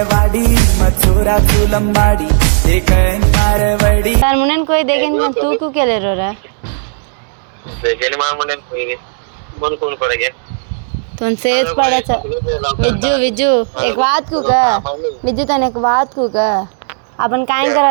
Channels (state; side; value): silent; left; digital silence